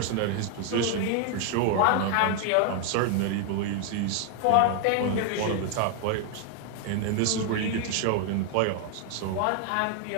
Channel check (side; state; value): both; different; correlation 0.00